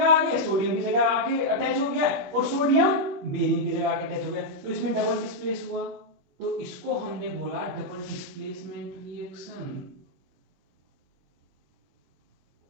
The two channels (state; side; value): late; left; 21 ms